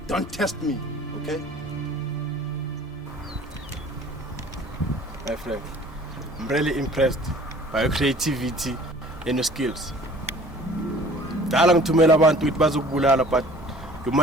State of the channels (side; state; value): both; normal; correlation 0.49